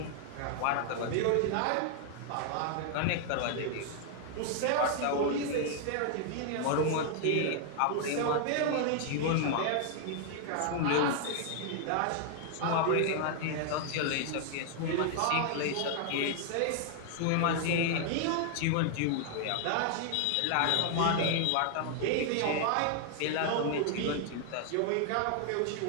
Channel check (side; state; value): both; different; correlation 0.00